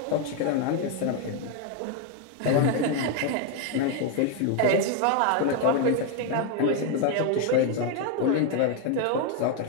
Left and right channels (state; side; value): different; both; correlation 0.01